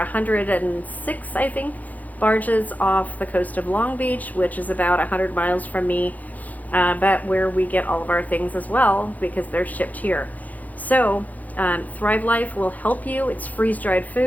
I think, barges off the coast of Long Beach, which is about 100 miles from me, but where we get all of our things as well, because they're shipped here. So Thrive Life will help you. It's freeze-dried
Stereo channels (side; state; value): right; late; 0.079 ms